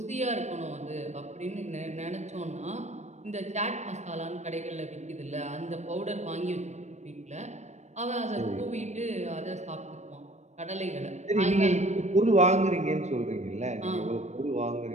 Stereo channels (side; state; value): left; late; 0.33 ms